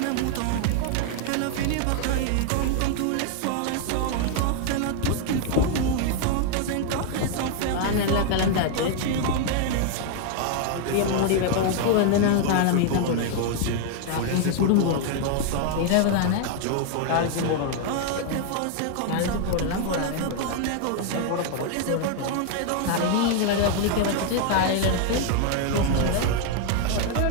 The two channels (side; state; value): both; different; correlation 0.00